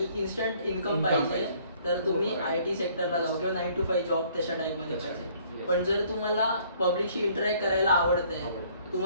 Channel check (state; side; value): inverted; both; correlation -0.60